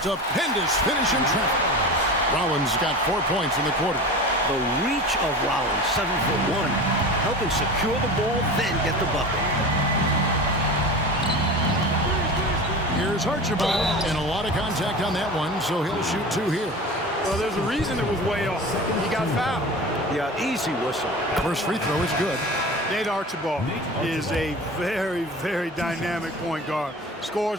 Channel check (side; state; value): both; normal; correlation 0.33